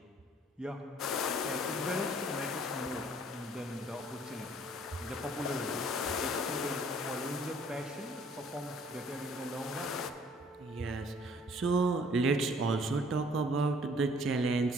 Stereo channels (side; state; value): both; normal; correlation 0.58